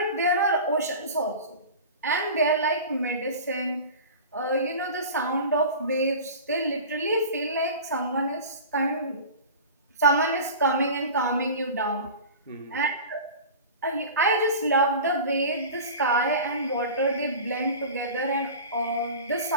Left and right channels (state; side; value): inverted; both; correlation -0.35